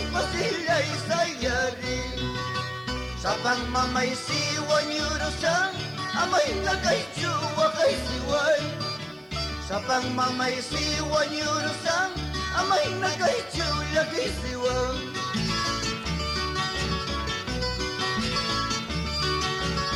sayari. Sa pangmamay siwan yurusan, amay na kay siway. Sa pangmamay siwan yurusan, amay na kay siway.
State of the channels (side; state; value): both; identical; correlation 1.00